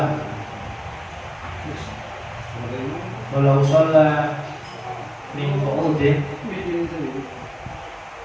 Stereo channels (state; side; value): identical; both; correlation 1.00